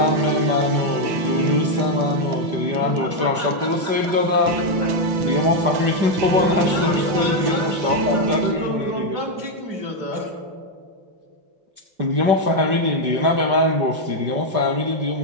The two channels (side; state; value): left; late; 5.2 ms